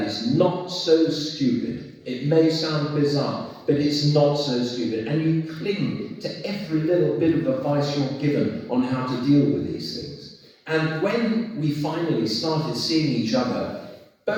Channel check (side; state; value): both; identical; correlation 1.00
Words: is not so stupid. It may sound bizarre, but it's not so stupid. And you cling to every little bit of advice you're given on how to deal with these things. And when we finally started seeing each other,